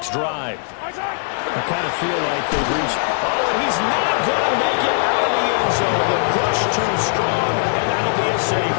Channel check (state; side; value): silent; right; 66 dB below the other